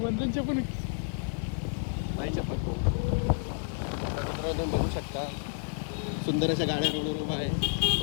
वंदनचे पण नाही शपथ तू. मित्रांनो तुम्ही बघू शकता सुंदर अशा गाड्या रोडवर उभा आहे.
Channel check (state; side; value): silent; right; 58 dB below the other